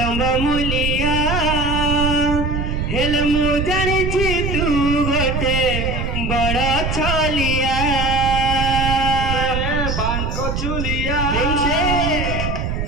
मुलिया हेल मु जानी छी तू गोटे बड़ छलिया बांक चुलिया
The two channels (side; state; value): right; noise; rumble, 2 dB below the sound